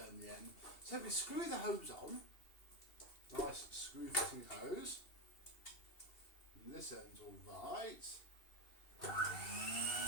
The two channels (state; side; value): late; right; 2.7 ms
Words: the end. So we screw the hose on, nice screw fitting hose. And this end's all right.